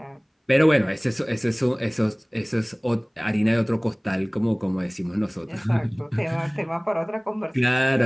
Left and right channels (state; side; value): identical; both; correlation 1.00